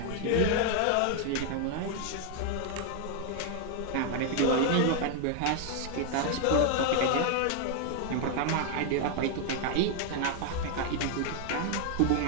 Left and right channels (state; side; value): different; both; correlation 0.00